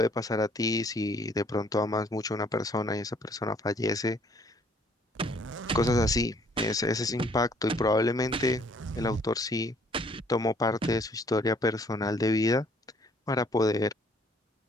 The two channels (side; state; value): both; normal; correlation 0.61